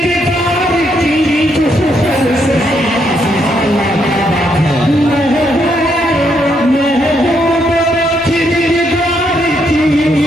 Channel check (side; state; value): both; normal; correlation 0.76